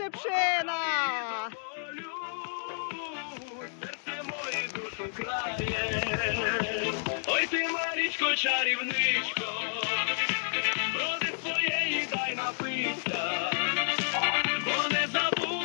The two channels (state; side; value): silent; right; digital silence